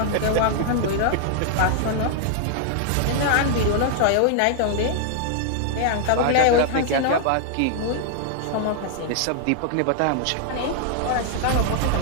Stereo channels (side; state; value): both; different; correlation 0.00